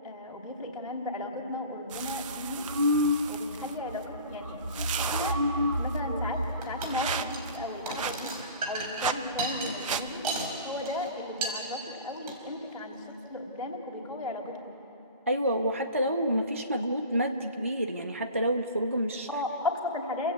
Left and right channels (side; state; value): both; inverted; correlation -0.38